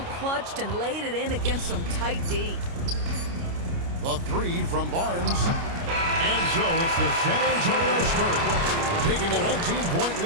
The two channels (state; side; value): late; left; 29 ms